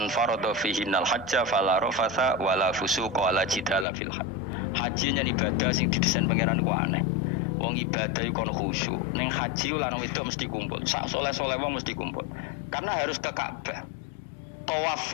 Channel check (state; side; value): drops out; right; at 3.9 s